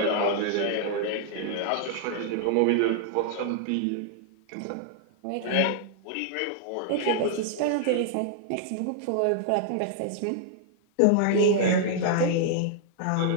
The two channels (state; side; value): different; both; correlation -0.01